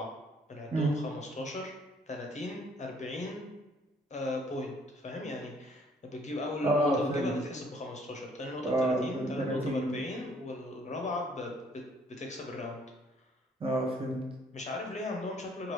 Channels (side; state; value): both; normal; correlation 0.63